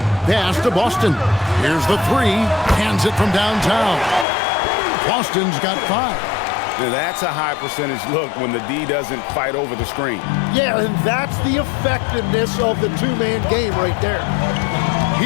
Pass to Boston. Here's the three. Hands it from downtown. Boston's got 5. That's a high percentage look when the D doesn't fight over the screen. Yeah, and that's the effectiveness of the two-man game right there.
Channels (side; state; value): right; drops out; at 4.2 s